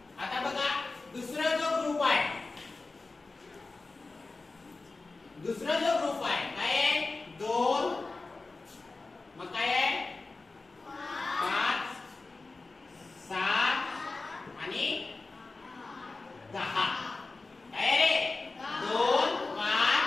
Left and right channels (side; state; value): right; quieter; 3.6 dB